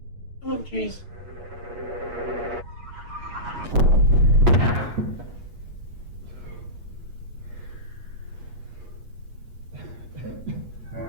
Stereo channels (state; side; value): late; left; 8.4 ms